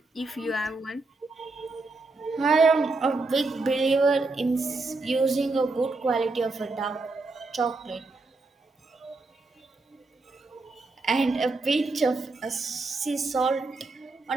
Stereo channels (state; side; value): quieter; left; 3.4 dB